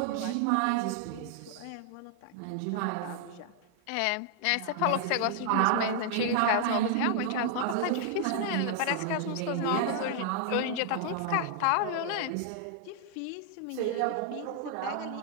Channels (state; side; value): different; both; correlation 0.00